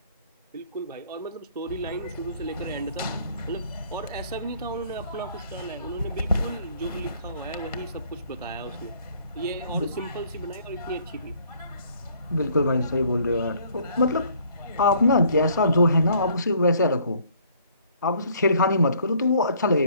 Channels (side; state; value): both; inverted; correlation -0.60